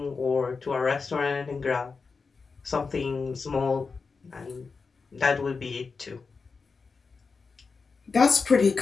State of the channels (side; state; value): right; quieter; 4.7 dB